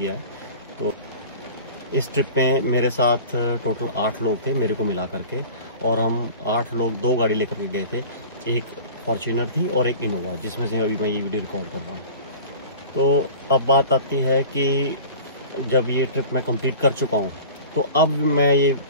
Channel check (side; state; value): both; inverted; correlation -0.39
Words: है। तो इस ट्रिप में मेरे साथ टोटल 8 लोग थे मेरे को मिला करके, और हम 8 लोग 2 गाड़ी लेकर के गए थे। एक फॉर्च्यूनर थी और एक इनोवा, जिसमें से अभी मैं ये वीडियो रिकॉर्ड कर रहा हूँ। तो अब बात आती है कि जब ये ट्रिप मैं कंप्लीट कर चुका हूँ, तो अब मैं ये